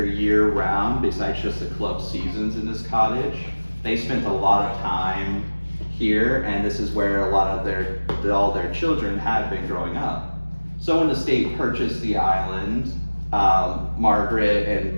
year round besides just the club seasons in this cottage. They spent a lot of time here, and this is where a lot of all their children had been growing up. So when the state purchased the island, Margaret and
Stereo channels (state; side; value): inverted; both; correlation -1.00